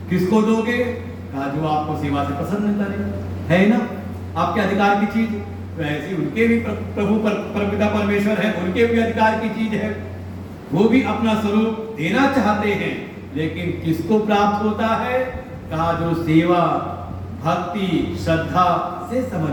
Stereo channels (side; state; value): both; identical; correlation 1.00